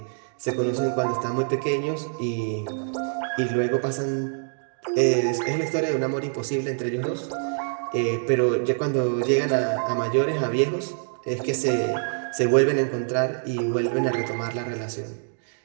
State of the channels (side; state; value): left; silent; digital silence